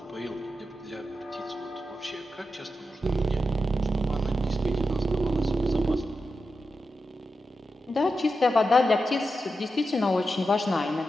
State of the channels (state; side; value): normal; both; correlation 0.89